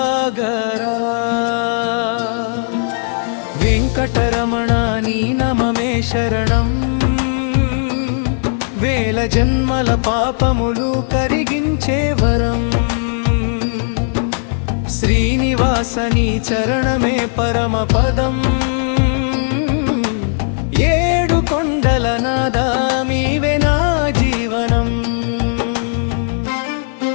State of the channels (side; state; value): right; silent; digital silence